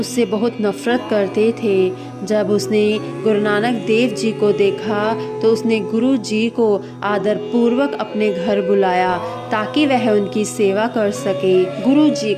बहुत नफरत करते थे। जब उसने गुरु नानक देव जी को देखा तो उसने गुरु जी को आदर पूर्वक अपने घर बुलाया ताकि वह उनकी सेवा कर सके। गुरु जी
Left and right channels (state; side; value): identical; both; correlation 1.00